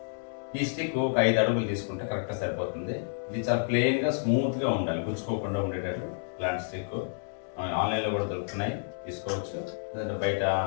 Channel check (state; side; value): silent; right; digital silence